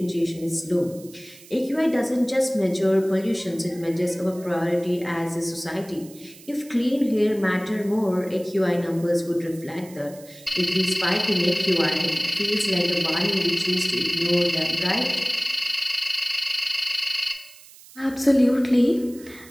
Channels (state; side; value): noise; right; hiss, 21 dB below the sound